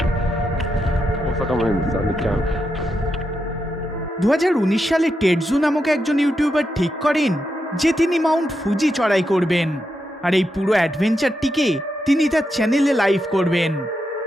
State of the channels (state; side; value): normal; both; correlation 0.85